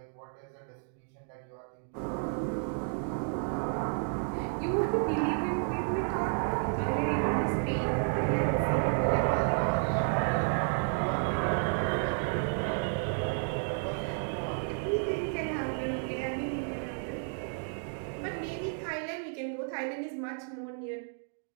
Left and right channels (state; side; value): silent; left; 57 dB below the other